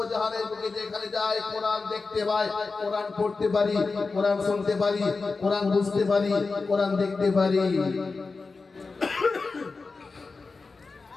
জাহানের বুকে যেখানে যাই কোরআন দেখতে পাই, কোরআন পড়তে পারি, কোরআন শুনতে পারি, কোরআন বুঝতে পারি, কোরআন দেখতে পারি।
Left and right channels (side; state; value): right; quieter; 4.1 dB